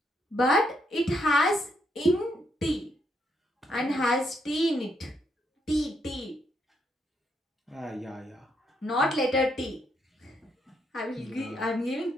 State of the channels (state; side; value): normal; both; correlation 0.76